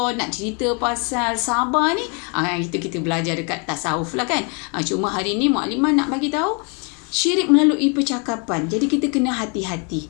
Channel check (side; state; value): right; quieter; 35.4 dB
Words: nak cerita pasal sabar ni, kita belajar dekat tasawuf lah kan. Cuma hari ni Mak Limah nak bagi tahu syirik melalui percakapan. Jadi kita kena hati-hati